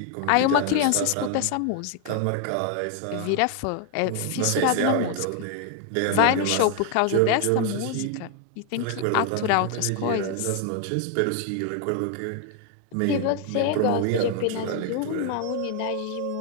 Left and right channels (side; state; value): both; different; correlation 0.01